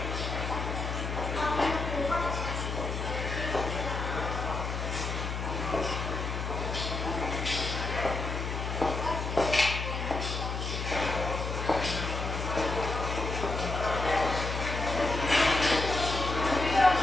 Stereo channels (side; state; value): left; noise; hum, 3 dB below the sound